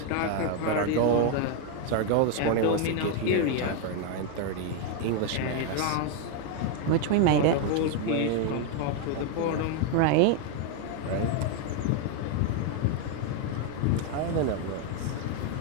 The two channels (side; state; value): both; different; correlation 0.01